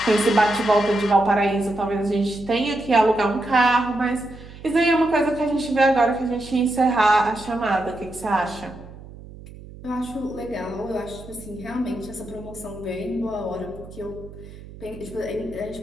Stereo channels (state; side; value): noise; right; hum, 17 dB below the sound